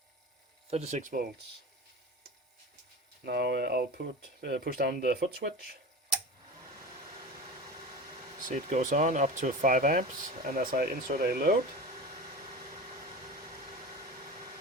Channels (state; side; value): normal; both; correlation 0.31